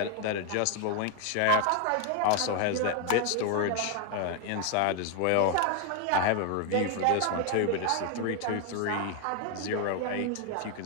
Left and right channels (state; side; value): different; both; correlation 0.01